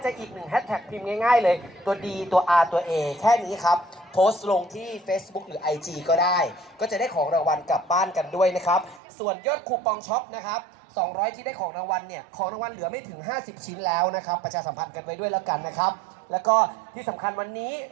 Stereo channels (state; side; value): drops out; left; at 9.0 s